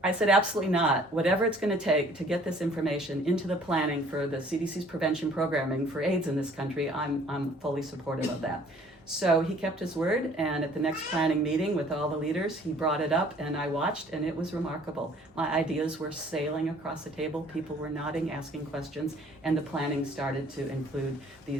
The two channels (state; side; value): normal; both; correlation 0.55